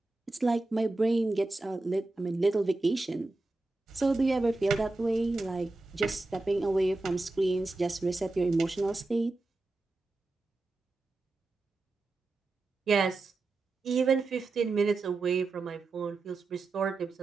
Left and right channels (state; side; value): quieter; left; 3.2 dB